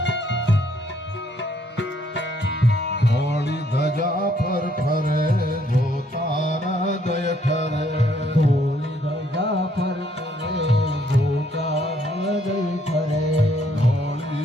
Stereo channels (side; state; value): both; normal; correlation 0.68